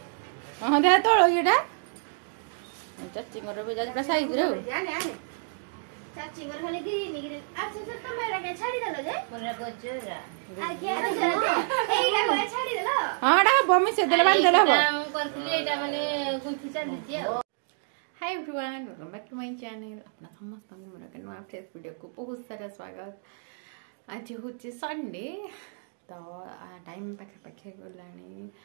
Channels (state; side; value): silent; left; digital silence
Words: हाँ दे तोड़ ये चाची भी जा साइज रे चाची मर खाली ग्रीन ग्रीन अच्छा से कैमरा के छाड़ी देलो जे मोरा गजरा आगे एइला को छाड़ी देलो हां डा बमी से देले बांध देले हबो हम करथली एटा माने गुंथि चली जे hi everyone welcome back to my channel अपना समस्त मोरा के नया फ्रेश वीडियो को बहुत सारा स्वागत आज होचे संडे तो टाइम पाखे पाखे गलानी